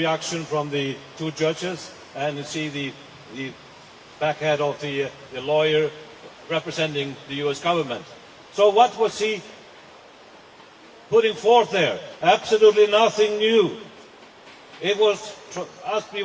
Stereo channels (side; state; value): both; identical; correlation 1.00